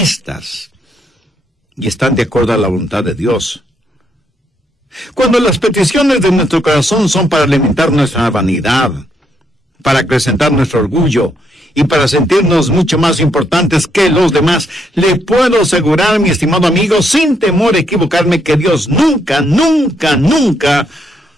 y están de acuerdo a la voluntad de Dios. Cuando las peticiones de nuestro corazón son para alimentar nuestra vanidad, para acrecentar nuestro orgullo y para sentirnos mucho más importantes que los demás, le puedo asegurar, mi estimado amigo, sin temor a equivocarme, que Dios nunca, nunca, nunca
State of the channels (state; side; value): normal; both; correlation 0.75